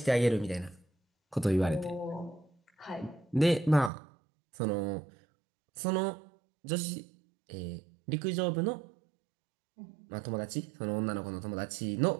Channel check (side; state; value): left; drops out; at 3.9 s